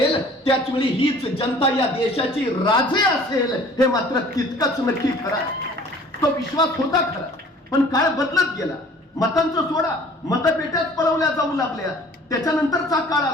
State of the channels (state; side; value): normal; both; correlation 0.50